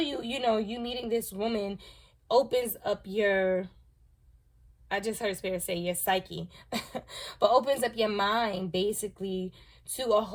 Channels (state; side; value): identical; both; correlation 1.00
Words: you meeting this woman opens up your, I just heard Spirit say your psyche, but opens up your mind basically to a